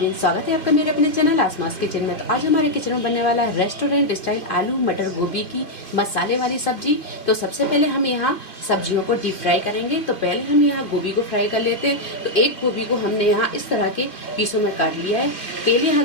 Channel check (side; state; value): right; late; 2.3 ms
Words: स्वागत है आपका मेरे अपने चैनल आसमास किचन में। तो आज हमारे किचन में बनने वाला है रेस्टोरेंट स्टाइल आलू मटर गोभी की मसाले वाली सब्जी। तो सबसे पहले हम यहाँ सब्जियों को डीप फ्राई करेंगे। तो पहले हम यहाँ गोभी को फ्राई कर लेते हैं। तो एक गोभी को हमने यहाँ इस तरह के पीसों में काट लिया है। तेल